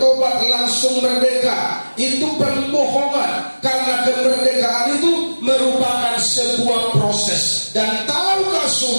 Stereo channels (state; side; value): inverted; both; correlation -1.00